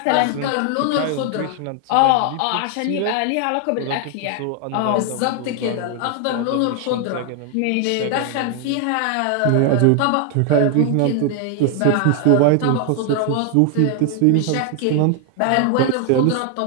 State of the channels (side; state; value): both; different; correlation 0.00